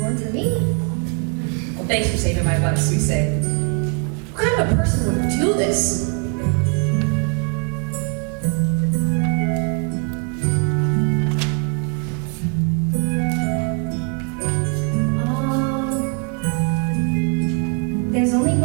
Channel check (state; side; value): quieter; left; 39.6 dB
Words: for me. Well, thanks for saving my butt, Suisei. What kind of a person would do this? There's only